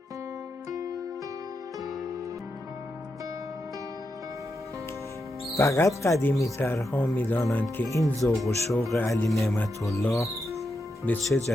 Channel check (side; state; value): both; normal; correlation 0.85